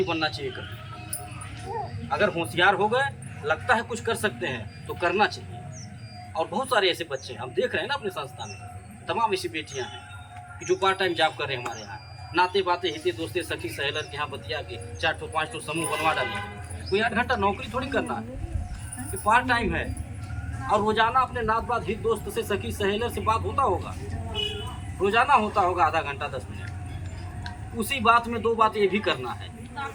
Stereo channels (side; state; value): both; identical; correlation 1.00